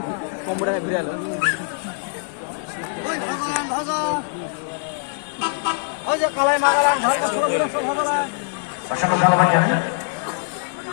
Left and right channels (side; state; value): right; silent; 64 dB below the other